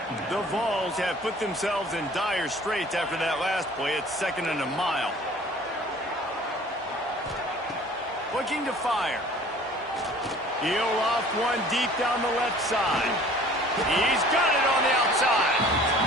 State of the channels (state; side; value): normal; both; correlation 0.49